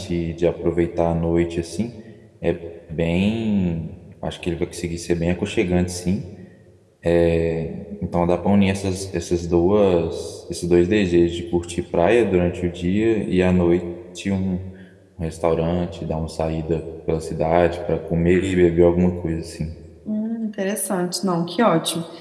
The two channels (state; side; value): identical; both; correlation 1.00